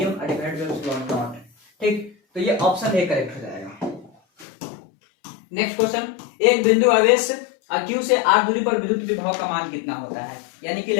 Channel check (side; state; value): right; drops out; at 4.5 s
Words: divided by epsilon not. ठीक, तो ये ऑप्शन ए करेक्ट हो जाएगा। नेक्स्ट क्वेश्चन, एक बिंदु आवेश Q से r दूरी पर विद्युत विभव का मान कितना होता है, यानी कि